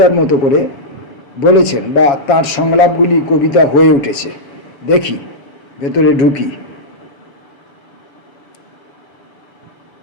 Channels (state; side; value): late; right; 7.2 ms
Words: মতো করে বলেছেন বা তার সংলাপগুলি কবিতা হয়ে উঠেছে। দেখি, ভেতরে ঢুকি।